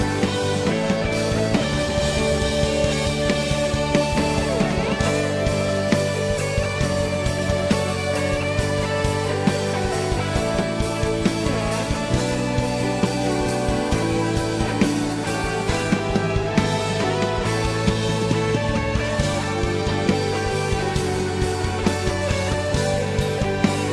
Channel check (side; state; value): both; identical; correlation 1.00